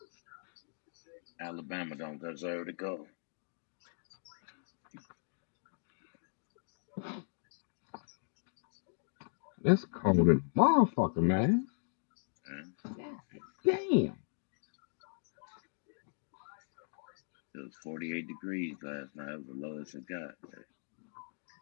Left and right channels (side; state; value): right; silent; digital silence